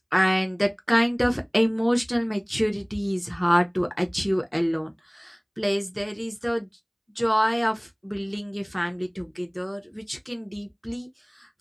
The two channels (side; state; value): both; identical; correlation 1.00